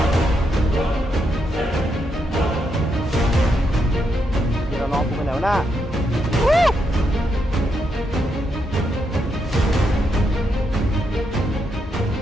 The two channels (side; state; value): both; normal; correlation 0.81